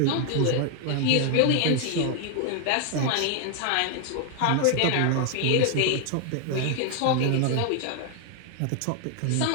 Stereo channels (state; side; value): different; both; correlation 0.00